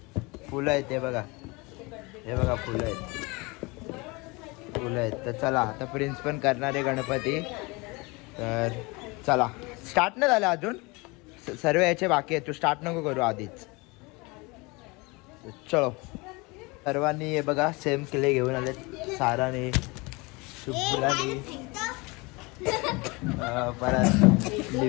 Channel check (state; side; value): quieter; right; 26.1 dB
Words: फुलं आहेत. हे बघा फुलं आहेत. तर चला आता प्रिन्स पण करणार आहे गणपती. तर चला स्टार्ट नाही झालं अजून, सर्व याचे बाकी आहे. तू स्टार्ट नको करू आधीच. चलो सर्वांनी हे बघा सेम क्ले घेऊन आले. साराने, शुभ्राने, परत